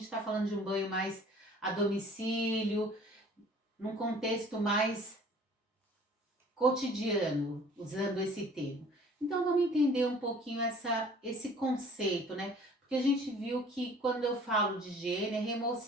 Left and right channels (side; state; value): both; normal; correlation 0.50